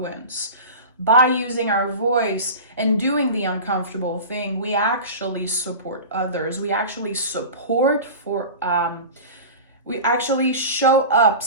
By using our voice and doing the uncomfortable thing, we actually support others. We actually we actually show up,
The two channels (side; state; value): both; inverted; correlation -0.32